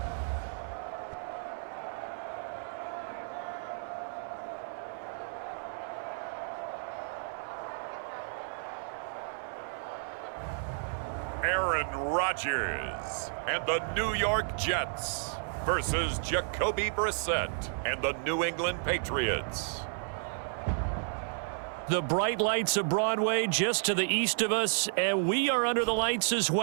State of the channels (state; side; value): silent; left; 56 dB below the other